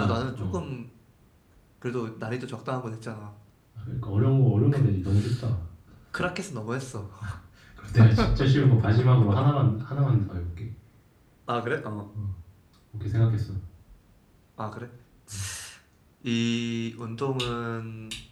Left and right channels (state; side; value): identical; both; correlation 1.00